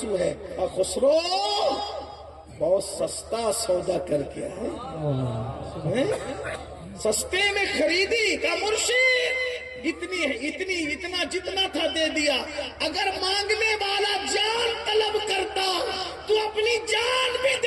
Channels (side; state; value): both; identical; correlation 1.00